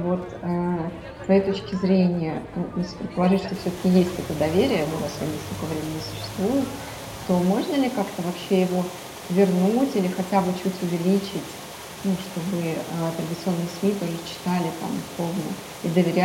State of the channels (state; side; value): identical; both; correlation 1.00